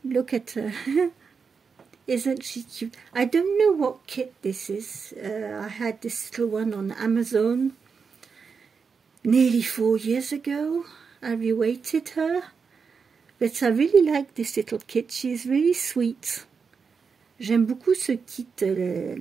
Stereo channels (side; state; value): left; quieter; 5.6 dB